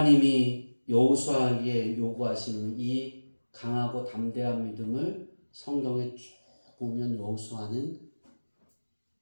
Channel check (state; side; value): inverted; both; correlation -1.00